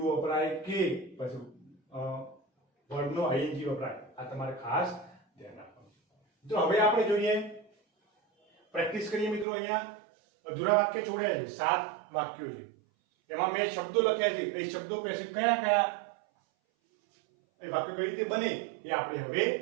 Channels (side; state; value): left; drops out; at 9.5 s